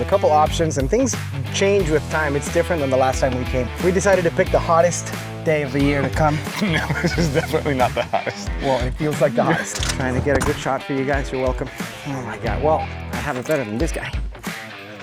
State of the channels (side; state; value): both; identical; correlation 1.00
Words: couple options, and things change with time. It's different than the last time we came. We decided to pick the hottest day of the year to come. No, this is definitely not the hottest. Well, it feels like the hottest. Trying to get a good shot for you guys. You're welcome. Oh my God. Well, I have it better than this guy.